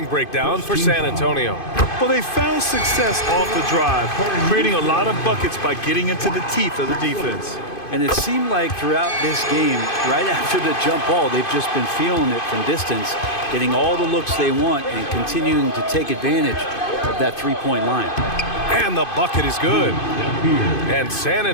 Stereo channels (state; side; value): late; right; 2.5 ms